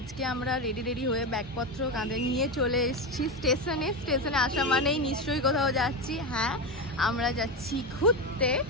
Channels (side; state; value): both; normal; correlation 0.15